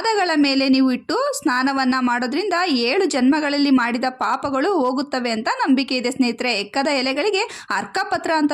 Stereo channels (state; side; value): identical; both; correlation 1.00